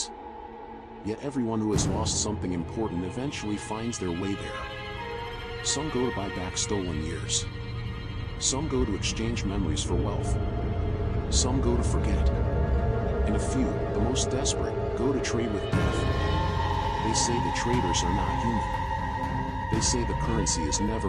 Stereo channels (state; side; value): identical; both; correlation 1.00